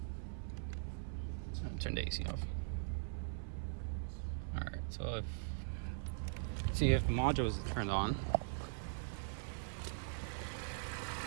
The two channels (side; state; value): left; silent; 50 dB below the other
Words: Turn the AC off. All right, so see if the module is turned on.